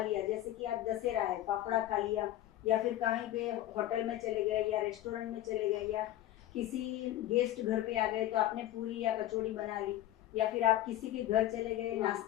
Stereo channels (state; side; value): quieter; right; 13.7 dB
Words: जैसे कि आज दशहरा है, फाफड़ा खा लिया, या फिर कहीं पे होटल में चले गए या रेस्टोरेंट में चले गए या किसी गेस्ट घर पे आ गए तो आपने पूरी या कचौड़ी बना ली, या फिर आप किसी के घर चले गए